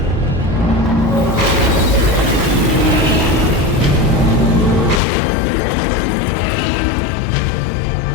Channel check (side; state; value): right; drops out; at 5.0 s